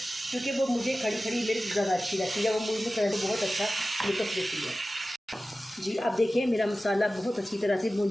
क्योंकि वो मुझे खड़ी मिर्च ज़्यादा अच्छी लगती है, वो मुझे करें तो बहुत अच्छा लुत्फ़ देती है। जी अब देखिए मेरा मसाला बहुत अच्छी तरह से भून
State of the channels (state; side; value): normal; both; correlation 0.95